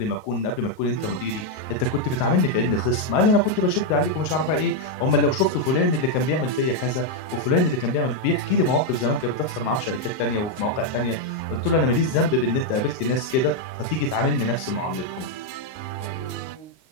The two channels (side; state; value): right; late; 38 ms